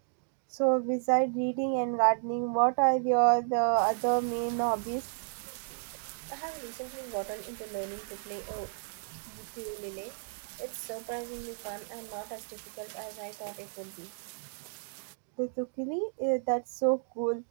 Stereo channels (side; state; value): left; silent; digital silence